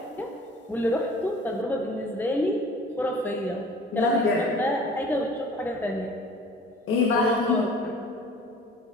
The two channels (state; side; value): normal; both; correlation 0.47